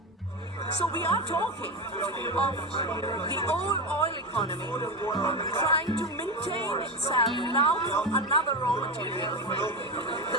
So we are talking of the old oil economy trying to maintain itself now from another raw material, the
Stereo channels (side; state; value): both; normal; correlation 0.17